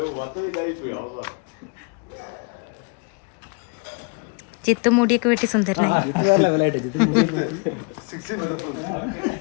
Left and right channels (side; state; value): right; quieter; 34.0 dB